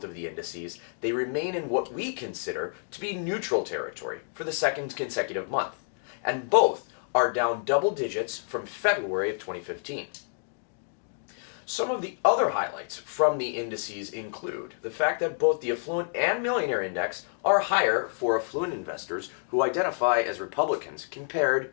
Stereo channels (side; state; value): right; silent; digital silence